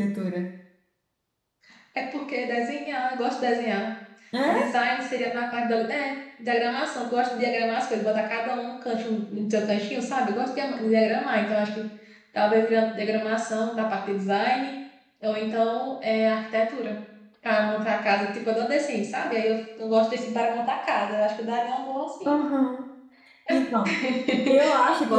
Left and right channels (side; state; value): both; identical; correlation 1.00